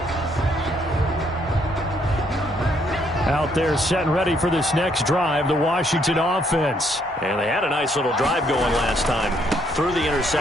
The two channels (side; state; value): both; normal; correlation 0.70